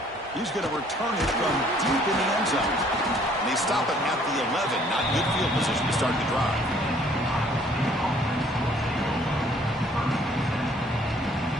He's going to return it from deep in the end zone. And they stop it at the 11. Not good field position to start the drive.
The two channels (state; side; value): normal; both; correlation 0.60